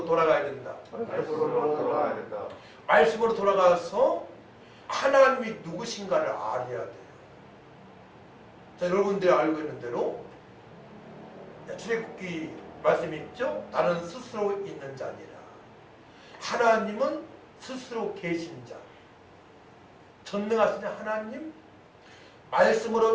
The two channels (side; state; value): both; identical; correlation 1.00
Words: 돌아가야 된다. 말씀으로 돌아가야 된다. 말씀으로 돌아가서 하나님이 누구신가를 알아야 돼요. 자, 여러분들이 알고 있는 대로 출애굽기 말씀이 있죠. 나는 스스로 있는 자니라. 하나님은 스스로 계신 자. 전능하신 하나님,